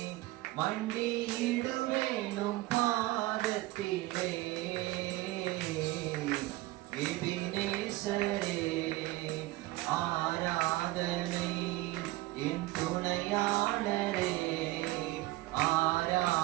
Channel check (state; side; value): quieter; left; 18.6 dB